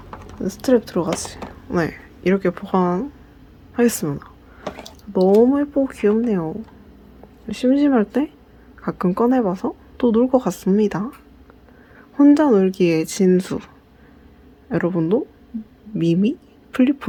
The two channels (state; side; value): identical; both; correlation 1.00